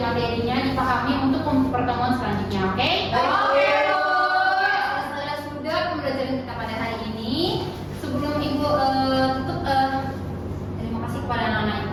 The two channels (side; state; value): both; identical; correlation 1.00